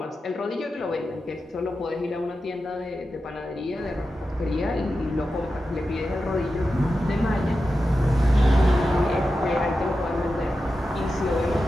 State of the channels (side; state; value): both; normal; correlation 0.91